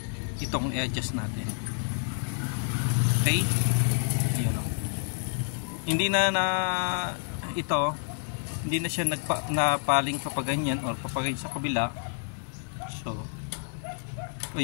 itong i-adjust natin. Okay? Ayun o. Hindi na hindi na siya napaling papaganyan or papaganyan sa kabila. So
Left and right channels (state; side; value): silent; right; 59 dB below the other